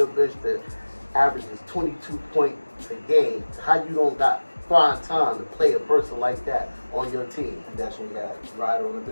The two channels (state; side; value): inverted; both; correlation -1.00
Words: averages 22 points a game? How you don't got find time to play a person like that on your team?" And that's when we got Ryder on the